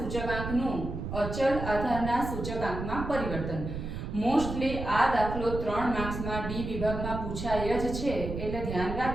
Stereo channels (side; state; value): right; noise; rumble, 6 dB below the sound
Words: અચલ આધારના સૂચકાંકમાં પરિવર્તન. મોસ્ટલી આ દાખલો 3 માર્ક્સમાં ડી વિભાગમાં પૂછાય જ છે, એટલે ધ્યાન